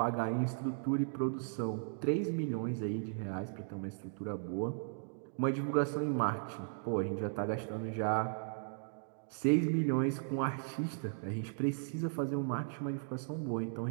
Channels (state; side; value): silent; left; digital silence